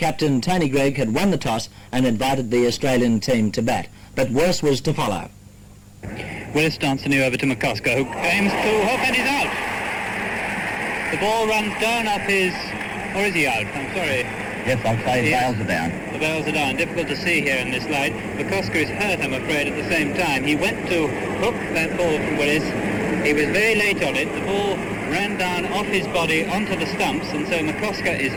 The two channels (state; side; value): identical; both; correlation 1.00